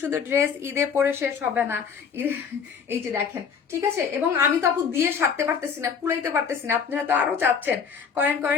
সুন্দর ড্রেস ঈদে পরে শেষ হবে না, এই যে দেখেন, ঠিক আছে। এবং আমি তো আপু দিয়ে সারতে পারতেছি না, কুলাইতে পারতেছি না, আপনারা তো আরো চাচ্ছেন, করেন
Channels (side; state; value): right; quieter; 6.5 dB